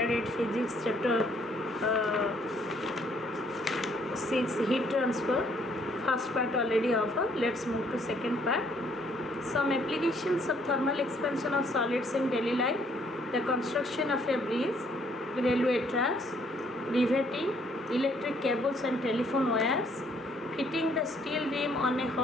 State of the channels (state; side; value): normal; both; correlation 0.65